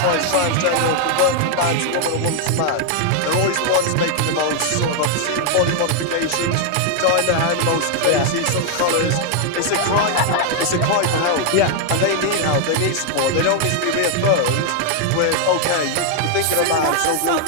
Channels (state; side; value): different; both; correlation 0.00